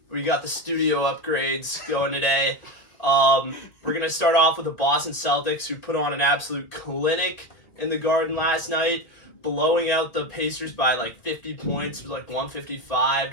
We got the studio upgrades going today. We're gonna start off with the Boston Celtics, who put on an absolute clinic in the Garden last night, blowing out the Pacers by like 50 points. It was like 155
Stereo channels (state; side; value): late; right; 1.9 ms